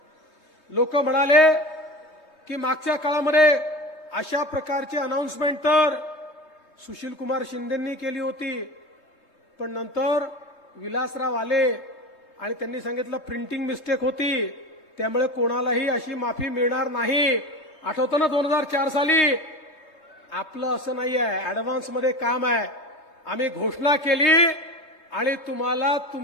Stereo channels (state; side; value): late; right; 3.7 ms